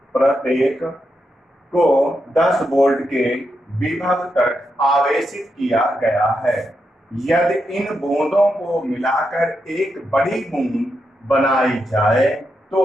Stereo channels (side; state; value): both; normal; correlation 0.84